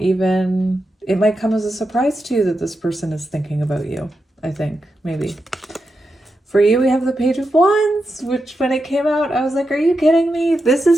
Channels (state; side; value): normal; both; correlation 0.88